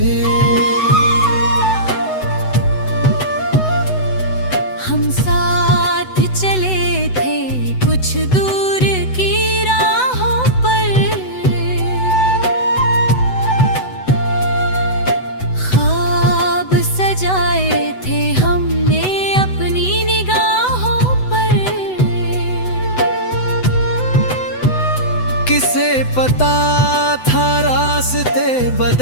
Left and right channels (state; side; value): late; right; 8.0 ms